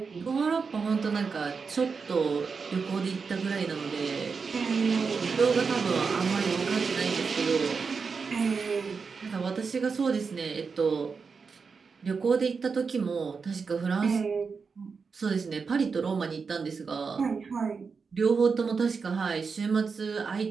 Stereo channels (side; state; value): left; quieter; 5.2 dB